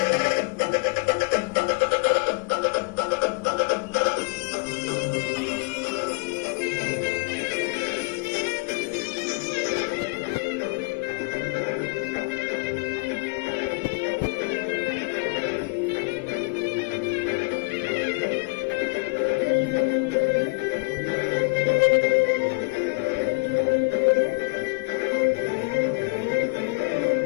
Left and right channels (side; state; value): right; quieter; 28.8 dB